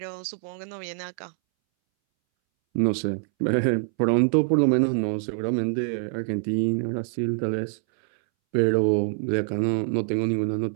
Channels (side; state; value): left; silent; 62 dB below the other